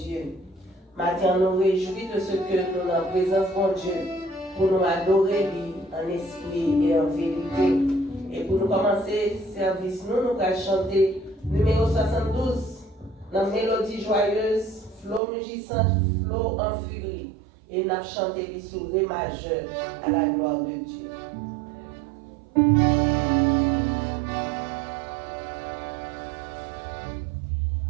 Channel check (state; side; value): drops out; left; at 15.2 s